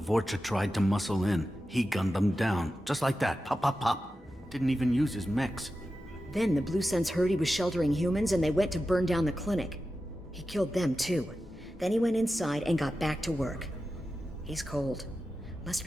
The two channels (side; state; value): both; normal; correlation 0.92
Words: tried to muscle in. He gunned them down. Just like that. Pop, pop, pop. Didn't even use his mechs. Then the Blue Suns heard he was sheltering humans and they went to burn down the clinic. He killed them too. Then he went inside and got back to work. He's cold. Must